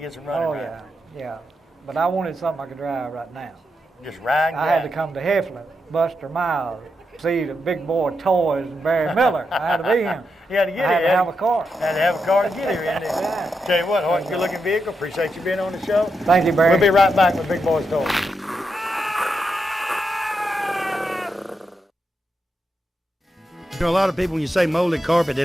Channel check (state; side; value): normal; both; correlation 0.85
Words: some running. Oh, right? yeah, yeah. But I wanted something I could drive right now. Just ride. And I had to drive. come to Heflin, Buster Miles, see the big boy Toys and Barry Miller. I had to be him. You had to get I had here. to have a car. Had to have a car to get here, didn't you? Yeah. Tell you what, Hoyt, good looking vehicle. Appreciate you being on the show. Thank you, Barry. We'll be right back with Big Boyz Toyz. You know, a lot of people, when you say molded carpet, they